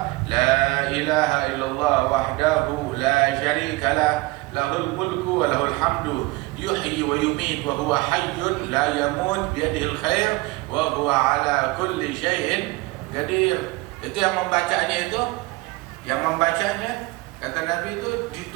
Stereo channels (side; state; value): left; quieter; 22.3 dB